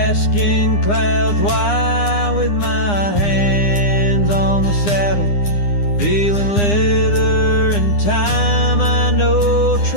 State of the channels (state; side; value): late; right; 9.8 ms